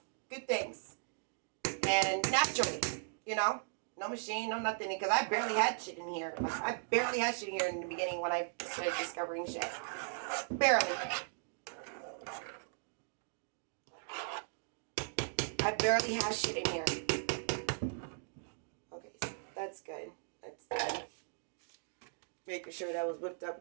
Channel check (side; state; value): left; silent; digital silence